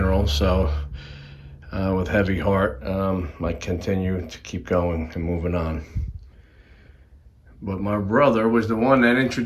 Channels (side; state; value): both; identical; correlation 1.00